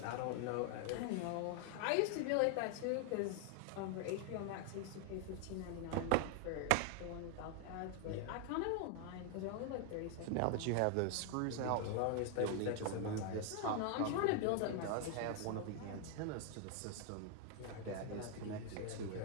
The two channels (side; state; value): both; different; correlation 0.00